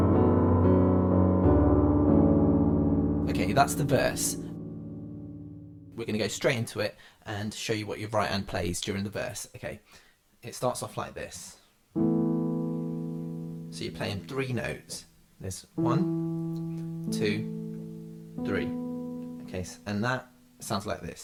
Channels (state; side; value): identical; both; correlation 1.00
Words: Okay, that's the verse. We're going to go straight into it and show you what your right hand plays during the verse. Okay, it starts off like this. So you're playing three notes. There's 1, 2, 3. Okay, and that sounds like